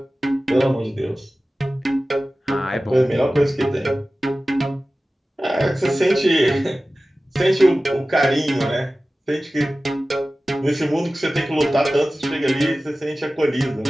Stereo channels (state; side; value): normal; both; correlation 0.96